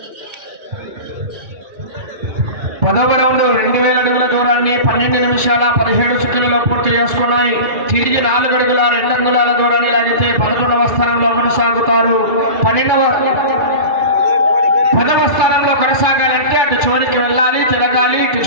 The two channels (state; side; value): late; left; 2.6 ms